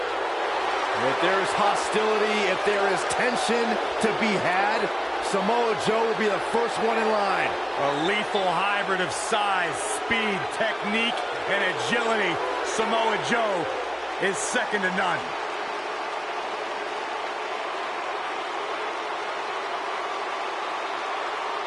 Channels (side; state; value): both; identical; correlation 1.00